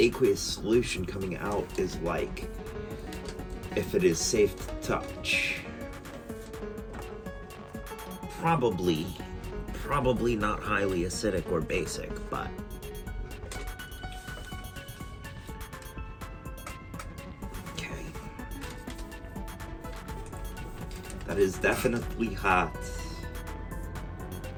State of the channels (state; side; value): identical; both; correlation 1.00